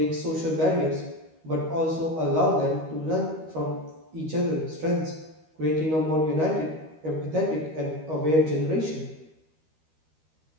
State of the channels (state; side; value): late; left; 13 ms